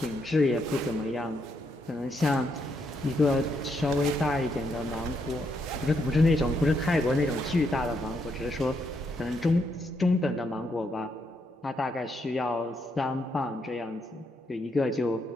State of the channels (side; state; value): both; normal; correlation 0.77